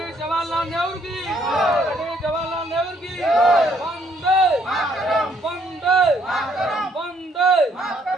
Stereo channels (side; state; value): both; normal; correlation 0.67